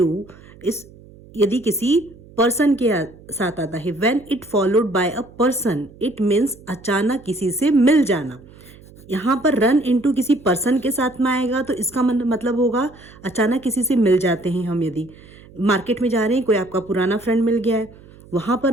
यदि किसी पर्सन के साथ आता है, when it followed by a person, it means अचानक किसी से मिल जाना। यहाँ पर रन इनटू किसी पर्सन के साथ में आएगा तो इसका मतलब होगा अचानक किसी से मिल जाते हैं हम। यदि मार्केट में जा रहे हैं, कोई आपका पुराना फ्रेंड मिल गया है, वहाँ पर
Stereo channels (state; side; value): noise; right; hum, 22 dB below the sound